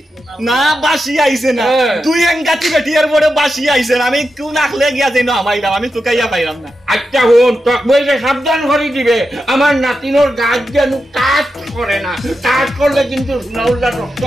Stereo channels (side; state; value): both; normal; correlation 0.88